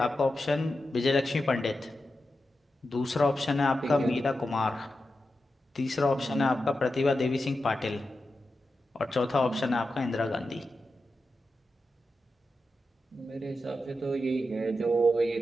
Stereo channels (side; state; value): both; normal; correlation 0.90